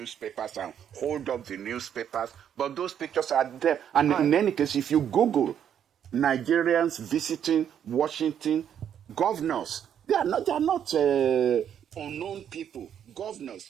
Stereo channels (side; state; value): left; quieter; 9.1 dB